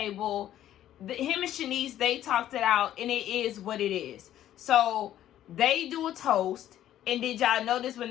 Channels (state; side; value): quieter; right; 12.1 dB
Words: Him and Shanice, they talked it out, and it is what it is. So they do a toast, and did y'all notice when